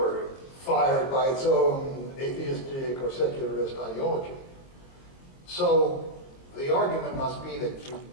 fired by its own atheistic or secularist ideology. So the argument must be that you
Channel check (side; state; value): right; late; 22 ms